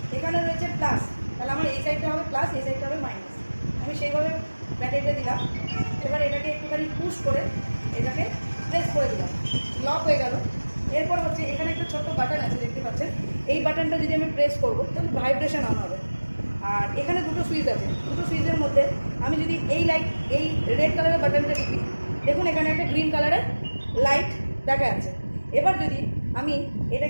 এখানে রয়েছে প্লাস, তাহলে আমার এই সাইডটা হবে প্লাস, এই সাইডটা হবে মাইনাস। আমি সেইভাবে ব্যাটারিটা দিলাম। এবার এটাকে একটুখানি পুশ করে এটাকে প্রেস করে দিলাম, লক হয়ে গেল। এরপর হচ্ছে এখানে একটা ছোট্ট বাটন আছে, দেখতে পাচ্ছেন। এই বাটনটা যদি আমি প্রেস করবো তাহলে ভাইব্রেশন অন হবে। আর এখানে দুটো সুইচ আছে, দুটো সুইচের মধ্যে আমি যদি এই লাইট, এই রেড কালারের বাটনটা টিপি, দেখুন এখানে একটা গ্রিন কালারের লাইট দেখা যাচ্ছে। এবার যদি আমি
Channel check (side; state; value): both; inverted; correlation -1.00